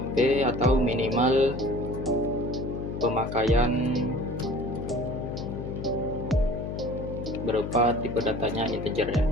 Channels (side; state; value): left; noise; hum, 6 dB below the sound